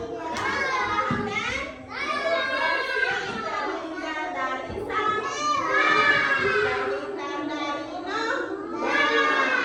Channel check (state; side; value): identical; both; correlation 1.00